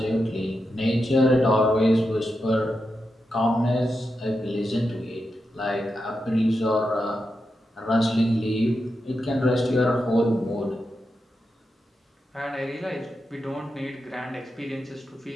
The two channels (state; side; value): normal; both; correlation 0.87